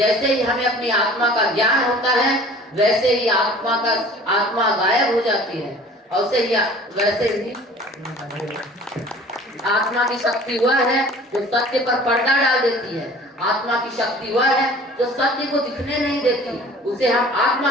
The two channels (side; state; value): both; normal; correlation 0.47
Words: ही हमें अपनी आत्मा का ज्ञान होता है वैसे ही आत्मा गायब हो जाती है। और वैसे ही आत्मा की शक्ति वह है जो सत्य पर पर्दा डाल देती है। आत्मा की शक्ति वह है जो सत्य को दिखने नहीं देती, उसे हम